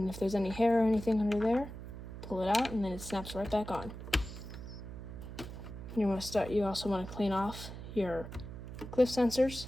if there's any hair or anything under there, pull it out and then it snaps right back on. You also want to clean off your cliff sensors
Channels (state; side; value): noise; right; hum, 10 dB below the sound